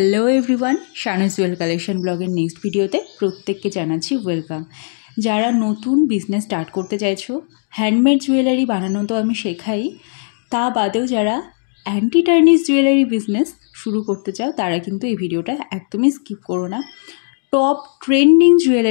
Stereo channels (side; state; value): right; silent; digital silence